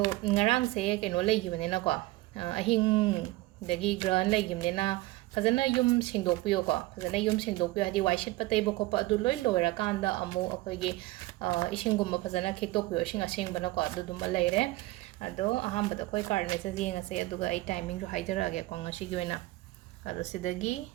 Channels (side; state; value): left; quieter; 19.2 dB